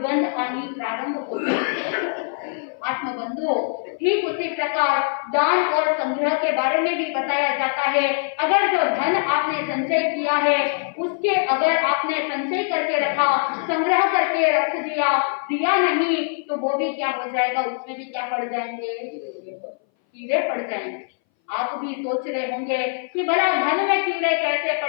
आनी प्रारंभ होती है। आत्मबंधुओं, ठीक उसी प्रकार दान और संग्रह के बारे में भी बताया जाता है। अगर जो धन आपने संचय किया है उसके अगर आपने संचय करके रखा, संग्रह करके रख दिया नहीं तो वो भी क्या हो जाएगा, उसमें भी क्या पड़ जाएंगे, कीड़े पड़ जाएंगे। आप भी सोच रहे होंगे कि भला धन में कीड़े कैसे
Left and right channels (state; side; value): silent; right; 60 dB below the other